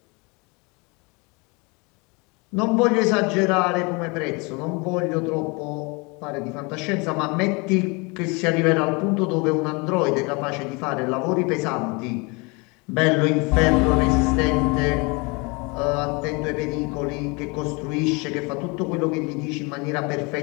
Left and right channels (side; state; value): right; quieter; 28.7 dB